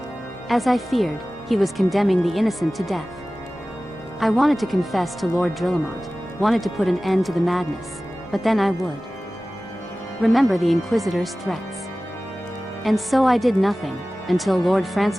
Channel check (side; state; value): both; normal; correlation 0.97